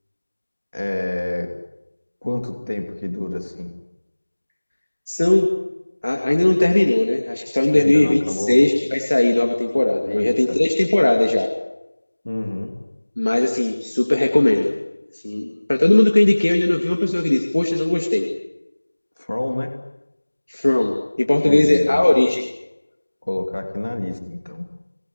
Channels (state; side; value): inverted; both; correlation -1.00